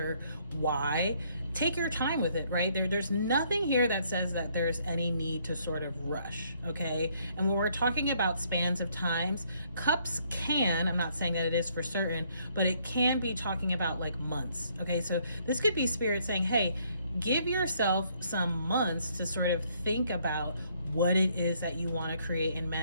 why, take your time with it, right? There's nothing here that says that there's any need to sort of rush, okay? And when we're talking about spans of times, cups can, I'm not saying that it is for certain, but it can be talking about like months, okay? So this could be Spirit saying, hey, give yourself some months to sort of think about what it is that you want to create and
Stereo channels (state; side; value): inverted; both; correlation -0.67